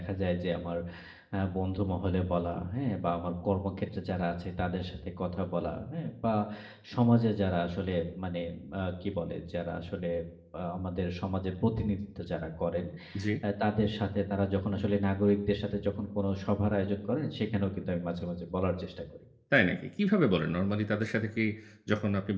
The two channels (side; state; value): both; identical; correlation 1.00